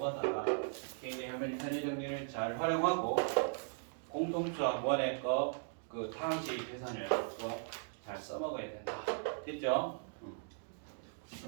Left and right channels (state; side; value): silent; left; digital silence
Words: 굉장히 현의 정리를 잘 활용하고 공통수학 원의 그 방식 계산을 또 잘 써먹어야 된다. 됐죠?